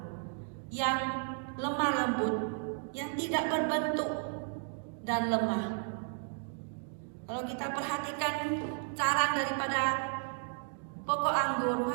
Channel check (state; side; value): silent; left; 55 dB below the other